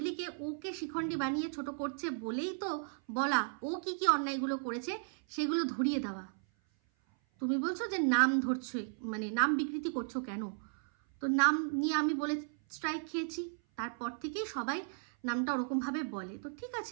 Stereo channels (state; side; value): silent; left; 54 dB below the other